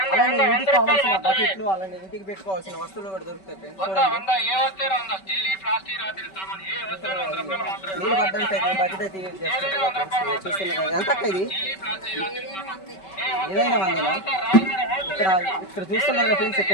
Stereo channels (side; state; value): right; late; 5.2 ms